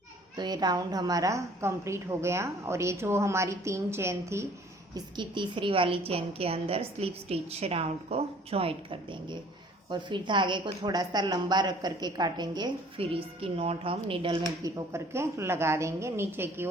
तो ये राउंड हमारा कंप्लीट हो गया। और ये जो हमारी 3 चेन थी इसकी तीसरी वाली चेन के अंदर स्लिप स्टिच राउंड को जॉइंट कर देंगे और फिर धागे को थोड़ा सा लंबा रख करके काटेंगे। फिर इसकी नॉट हम नीडल में पिरो करके लगा देंगे नीचे की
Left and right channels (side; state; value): both; normal; correlation 0.54